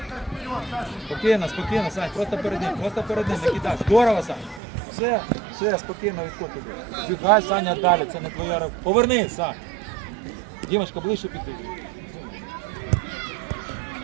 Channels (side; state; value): left; drops out; at 4.6 s